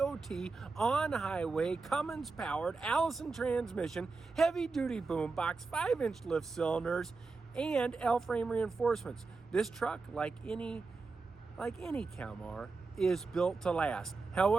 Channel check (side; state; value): left; quieter; 4.1 dB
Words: on-highway Cummins-powered Allison transmission, heavy-duty boom box, 5-inch lift cylinders, and L-frame reinforcements. This truck, like any Kalmar, is built to last.